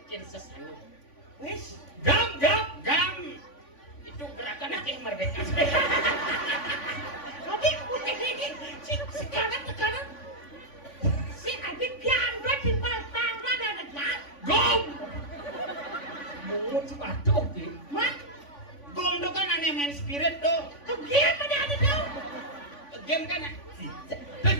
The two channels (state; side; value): late; right; 3.5 ms